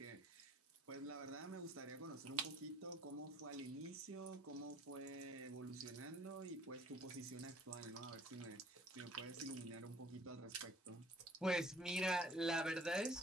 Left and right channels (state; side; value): normal; both; correlation 0.56